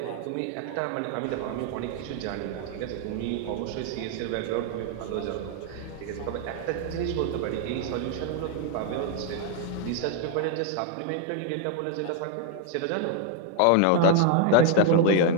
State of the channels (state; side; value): different; both; correlation 0.00